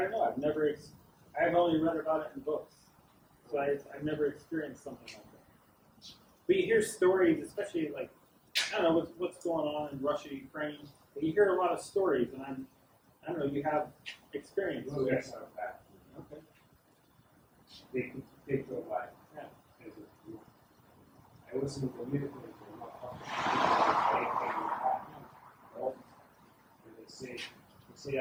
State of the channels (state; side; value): identical; both; correlation 1.00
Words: know, I've only read about it in books. So I've never experienced something like that. But you hear stories, especially like, I don't know, what's going on in Russia, Ukraine, but you hear a lot of stories, and I don't know, you have experience. Those guys are bad. Okay. They could take your life. Yeah. I was in the military for not I came back home, and they say